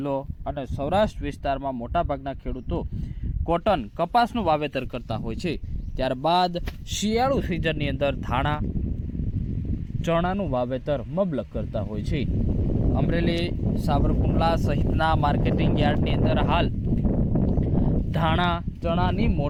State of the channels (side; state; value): both; identical; correlation 1.00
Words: અને સૌરાષ્ટ્ર વિસ્તારમાં મોટાભાગના ખેડૂતો કોટન, કપાસનું વાવેતર કરતા હોય છે. ત્યારબાદ શિયાળુ સિઝનની અંદર ધાણા, ચણાનું વાવેતર મબલક કરતા હોય છે. અમરેલી, સાવરકુંડલા સહિતના માર્કેટિંગ યાર્ડની અંદર હાલ ધાણા, ચણાની